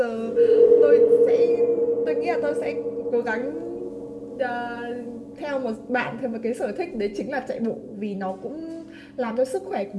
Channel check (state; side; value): identical; both; correlation 1.00